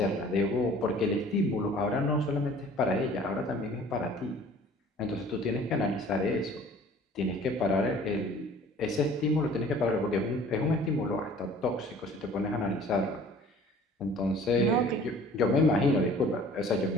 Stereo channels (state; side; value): normal; both; correlation 0.50